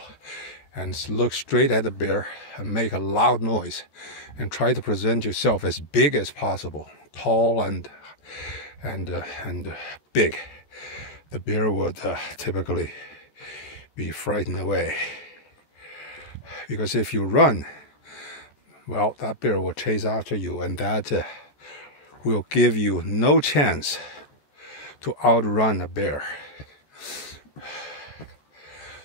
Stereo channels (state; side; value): late; right; 13 ms